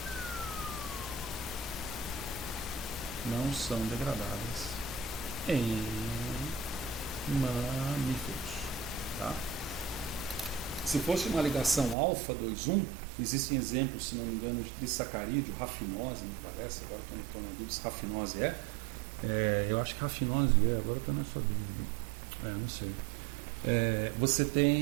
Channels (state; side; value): drops out; left; at 12.0 s